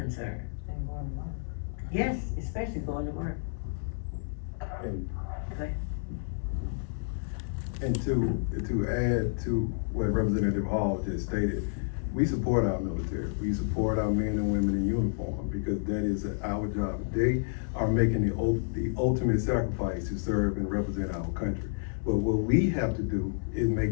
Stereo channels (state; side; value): silent; right; digital silence